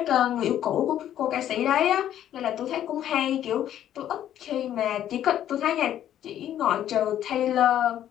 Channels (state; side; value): quieter; right; 11.2 dB